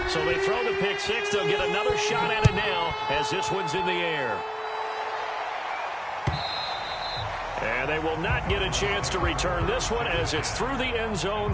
So they throw the pick six. They'll get another shot at it now as this one's in the air. And they will not get a chance to return this one as it's through the end zone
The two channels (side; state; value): both; identical; correlation 1.00